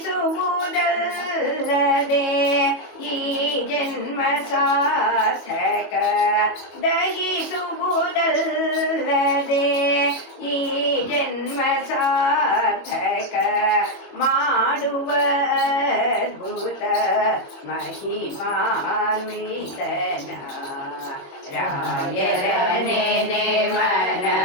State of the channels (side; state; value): right; late; 22 ms